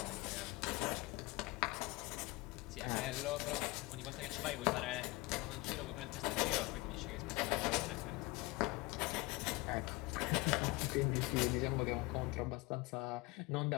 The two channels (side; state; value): right; quieter; 22.1 dB